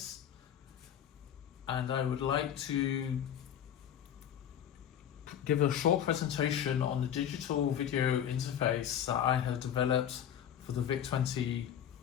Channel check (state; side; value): quieter; right; 9.6 dB